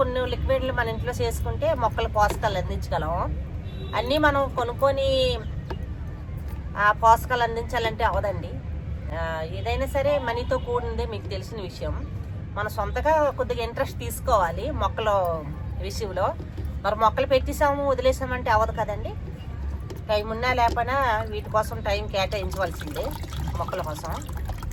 లిక్విడ్లు మన ఇంట్లో చేసుకుంటే మొక్కలు పోషకాలు అందించగలం. అన్నీ మనం కొనుక్కొని ఆ పోషకాలు అందించాలంటే అవదండి. ఏదైనా సరే మనీతో కూడిందే మీకు తెలిసిన విషయం. మనం సొంతగా కొద్దిగా ఇంట్రెస్ట్ తీసుకోవాలి మొక్కల విషయంలో. మరి మొక్కలు పెట్టేసాము వదిలేసామంటే అవ్వదు కదండి. టైం ఉన్నా లేకపోయినా వీటి కోసం టైం కేటాయించవలసిందే మొక్కల కోసం.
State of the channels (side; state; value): both; identical; correlation 1.00